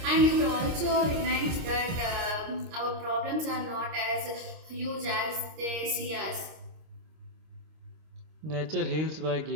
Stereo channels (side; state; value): left; late; 26 ms